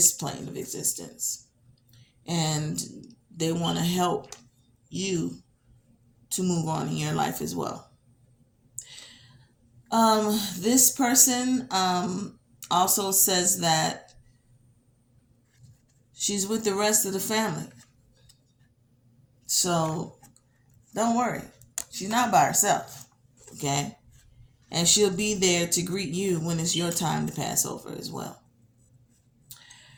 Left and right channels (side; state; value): both; identical; correlation 1.00